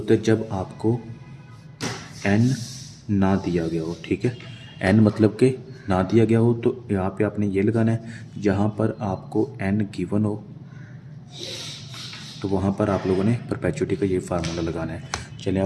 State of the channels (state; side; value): identical; both; correlation 1.00